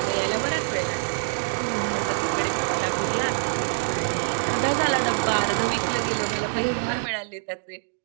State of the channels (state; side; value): silent; left; digital silence